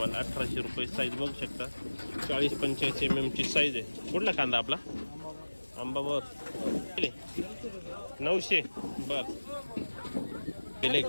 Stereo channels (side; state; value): both; inverted; correlation -1.00